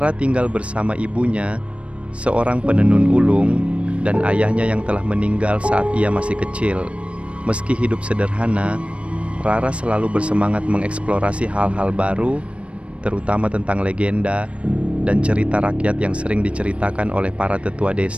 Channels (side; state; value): left; late; 0.061 ms